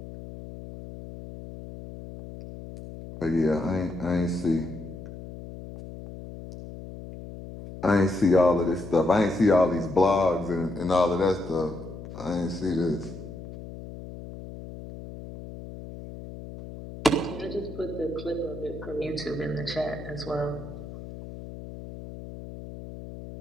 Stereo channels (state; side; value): noise; left; hum, 12 dB below the sound